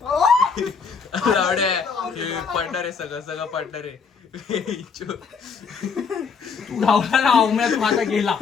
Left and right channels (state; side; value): quieter; right; 5.6 dB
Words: पडणार आहे सगळं सगळं पडणार आहे. तू धावला ना अवम्यात माझा गेला.